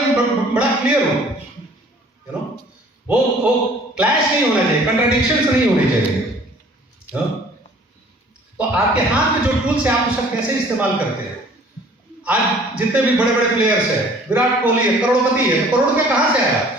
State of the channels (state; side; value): normal; both; correlation 0.52